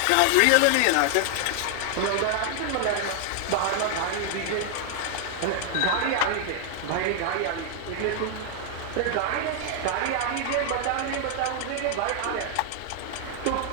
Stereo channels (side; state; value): both; different; correlation 0.00